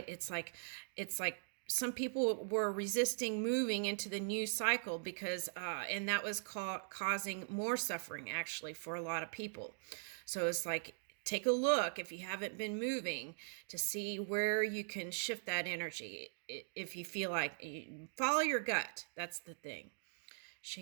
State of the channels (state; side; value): silent; left; digital silence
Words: It's like some people were resisting moving into the new cycle because and that was causing more suffering actually for a lot of people. So it's like, take a look if you haven't been moving to see where you can shift that energy. If you feel like, follow your gut, that's the thing.